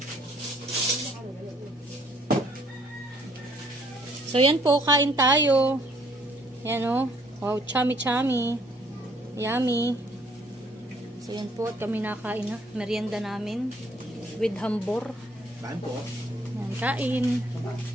So yan po, kain tayo. Yan o. Wow, chami-chami. Yummy. So yan po, at kami nakain na. Merienda namin. With hambor. Saan po? Yan, kain.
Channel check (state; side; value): normal; both; correlation 0.63